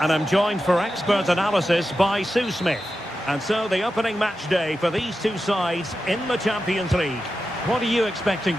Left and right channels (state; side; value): normal; both; correlation 0.91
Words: I'm joined for expert analysis by Sue Smith. And so the opening match day for these two sides in the Champions League. What are you expecting